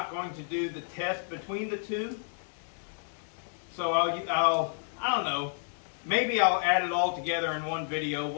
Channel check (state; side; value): silent; right; digital silence